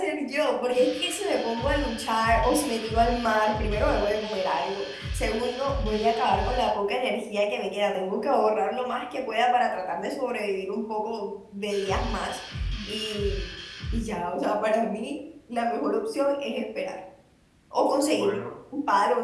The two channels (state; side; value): identical; both; correlation 1.00